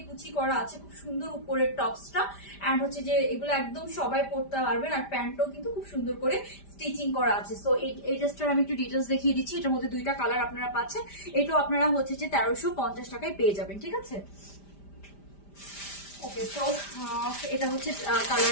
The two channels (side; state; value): right; late; 5.0 ms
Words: কুচি করা আছে, খুব সুন্দর উপরের টপসটা। অ্যান্ড হচ্ছে যে এগুলো একদম সবাই পরতে পারবেন। আর প্যান্টটাও কিন্তু খুব সুন্দর করে স্টিচিং করা আছে। সো এই ড্রেসটার আমি একটু ডিটেলস দেখিয়ে দিচ্ছি। এটার মধ্যে দুইটা কালার আপনারা পাচ্ছেন। এটাও আপনারা হচ্ছে যে 1350 টাকায় পেয়ে যাবেন, ঠিক আছে। ওকে, তো এটা হচ্ছে